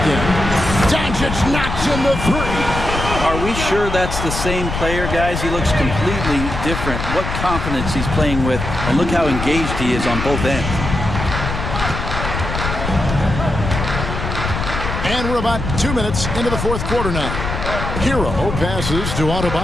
in. Doncic knocks in the 3. Are we sure that's the same player, guys? He looks completely different. What confidence he's playing with, and look how engaged he is on both ends. And we're about 2 minutes into the fourth quarter now. Hero passes to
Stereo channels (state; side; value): noise; left; rumble, 4 dB below the sound